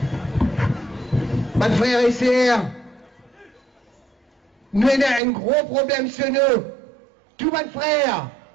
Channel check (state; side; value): drops out; left; at 5.2 s